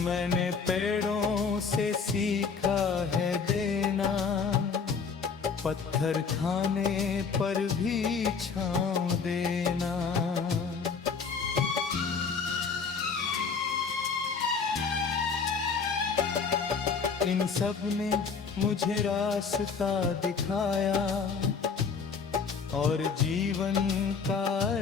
मैंने पेड़ों से सीखा है देना, पत्थर खाने पर भी छांव देना। इन सब ने मुझे रास्ता दिखाया, और जीवन का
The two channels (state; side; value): quieter; right; 5.5 dB